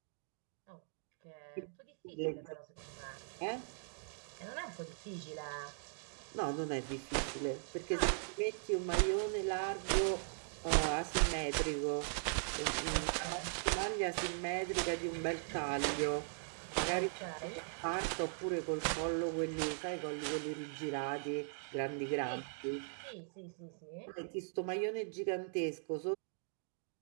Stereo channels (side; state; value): left; silent; digital silence